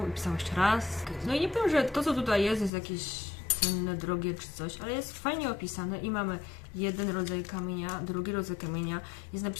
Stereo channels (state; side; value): drops out; right; at 2.7 s